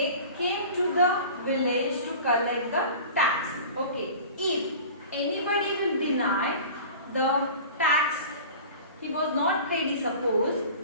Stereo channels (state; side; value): inverted; both; correlation -0.39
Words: came to the village to collect the tax. Okay. If anybody will deny the tax, he was not ready, suppose,